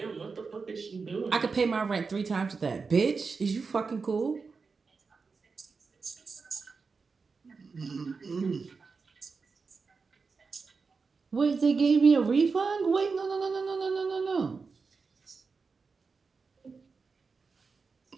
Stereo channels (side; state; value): left; quieter; 4.7 dB